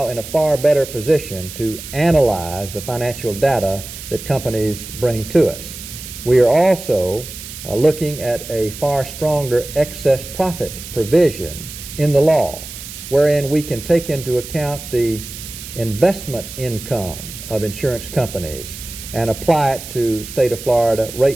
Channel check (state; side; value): noise; right; hiss, 12 dB below the sound